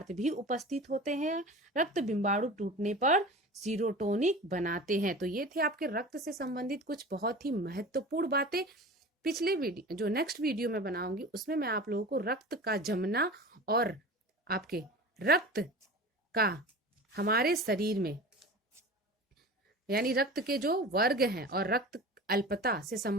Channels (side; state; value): both; normal; correlation 0.35